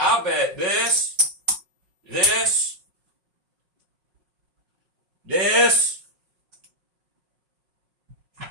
bet this, this, this,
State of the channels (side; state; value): left; late; 5.4 ms